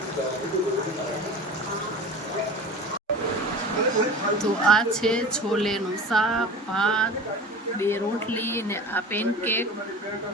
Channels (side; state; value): both; normal; correlation 0.36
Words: તો આ છે છોલેનું શાક, ભાત, 2 રોટલી ને આ પેનકેક.